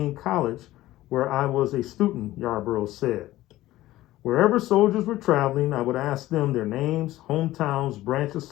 College, where I was a student, Yarborough said. Wherever soldiers were traveling, I would ask them their names, hometowns, branch of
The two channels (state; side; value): quieter; right; 16.0 dB